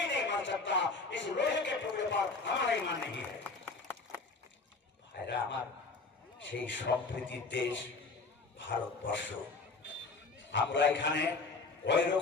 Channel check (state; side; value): quieter; right; 4.0 dB